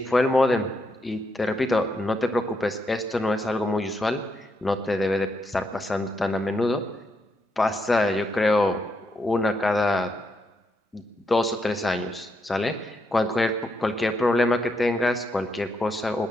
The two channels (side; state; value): both; normal; correlation 0.79